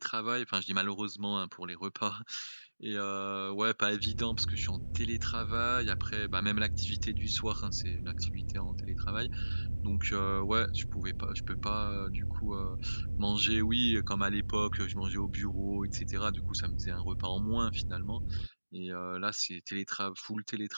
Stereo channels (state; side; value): inverted; both; correlation -1.00